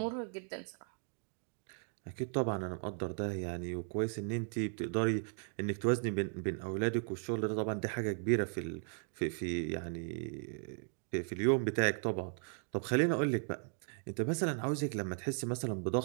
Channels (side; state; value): left; silent; 53 dB below the other